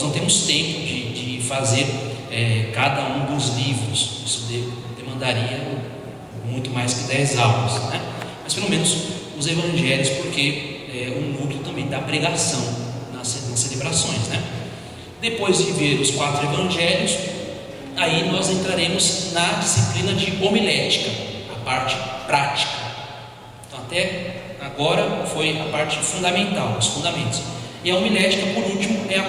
não temos tempo de fazer cada um dos livros. Isso demandaria muito mais que 10 aulas, né? Mas pelo menos os evangelhos, porque é um núcleo também da pregação nas celebrações, né? Depois de ver os 4 evangelhos, aí nós entraremos na disciplina de homilética, a parte prática. Então até agora foi a parte fundamental, os fundamentos. E a homilética, por último, é a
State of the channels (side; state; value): both; identical; correlation 1.00